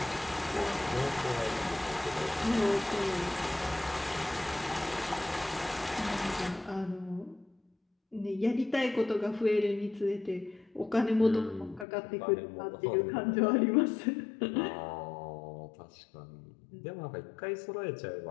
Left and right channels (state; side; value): drops out; right; at 11.9 s